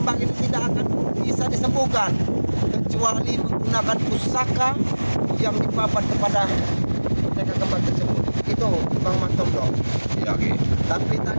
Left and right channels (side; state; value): both; inverted; correlation -1.00